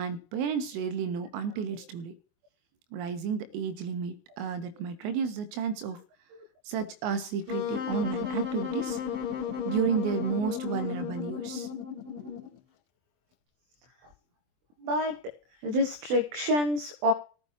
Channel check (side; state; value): left; late; 24 ms